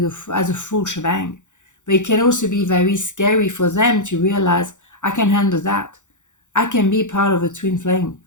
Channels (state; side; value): late; right; 0.85 ms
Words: as a full shebang. But it can also be very scary for them to realize, I can handle that. I can be part of a twin flame.